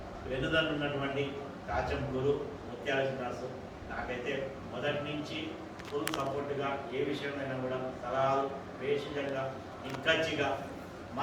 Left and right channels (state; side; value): identical; both; correlation 1.00